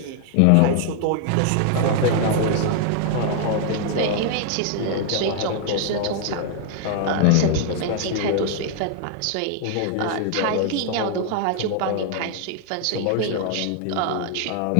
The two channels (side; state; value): both; different; correlation 0.00